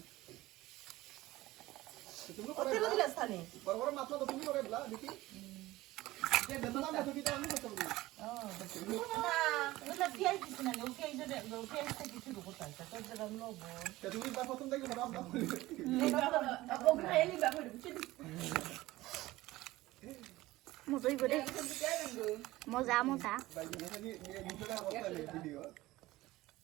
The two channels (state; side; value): quieter; left; 17.9 dB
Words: তুমি ও তেল দিলা স্থানে বড় বড় মাছ তো তুমি করে বলা দেখি যে বেতন না তো কিটা আমি করতে পারি না ওটা পিয়াজ দিছ না ও পিয়াজ থেকে কিছু করতে আছে তো যেটা লবণ তে তুমি বা প্রথম থেকে বড় আপনা করে ও গ্রাইলি বাবা বুঝছিস মজাই করে মজা মজা ভাই নাকি ভিডিওটা অবস্থা নেই ভিডিও